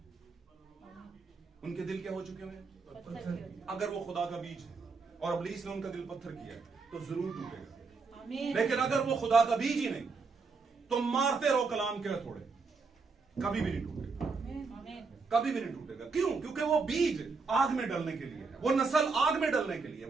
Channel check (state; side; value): quieter; left; 4.5 dB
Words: उनके दिल क्या हो चुके हैं, अगर वो खुदा का बीज है और इब्लीस ने उनका दिल पत्थर किया तो जरूर टूटेगा। लेकिन अगर वो खुदा का बीज ही नहीं तो मारते रहो कलाम के थोड़े, कभी भी नहीं टूटेगा, कभी भी नहीं टूटेगा। क्यों? क्योंकि वो बीज आग में डलने के लिए है, वो नस्ल आग में डलने के लिए,